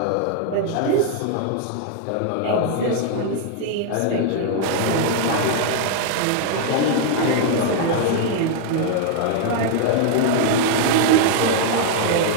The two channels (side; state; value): both; different; correlation 0.00